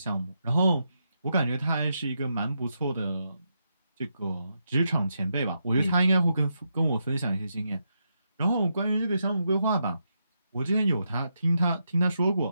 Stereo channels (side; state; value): both; inverted; correlation -0.83